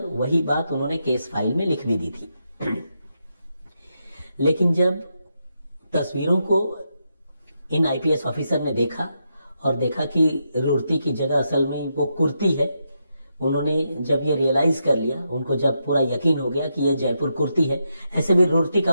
वही बात उन्होंने केस फाइल में लिख भी दी थी। लेकिन जब तस्वीरों को इन आईपीएस ऑफिसर ने देखा और देखा कि रूर्ती की जगह असल में वो कुर्ती है, उन्होंने जब ये रियलाइज कर लिया, उनको जब पूरा यकीन हो गया कि ये जयपुर कुर्ती है, ऐसे भी रूर्ती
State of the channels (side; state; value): both; inverted; correlation -0.83